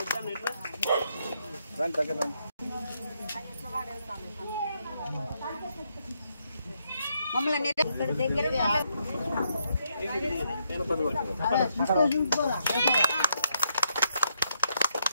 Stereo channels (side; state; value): both; inverted; correlation -0.77